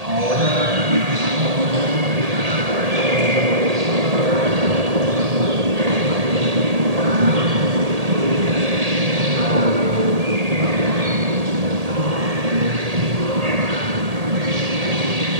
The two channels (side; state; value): left; late; 1.8 ms